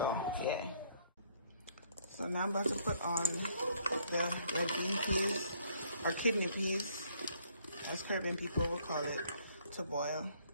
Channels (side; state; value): both; inverted; correlation -0.65